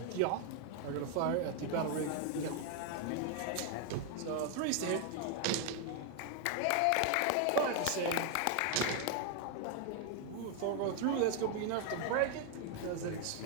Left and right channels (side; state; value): both; different; correlation 0.01